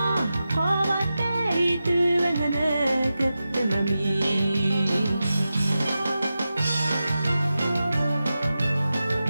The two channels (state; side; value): inverted; both; correlation -0.92